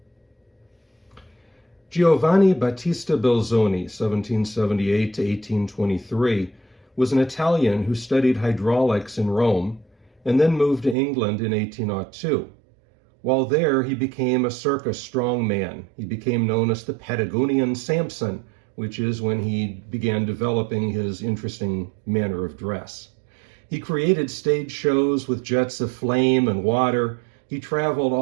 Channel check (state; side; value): drops out; left; at 11.0 s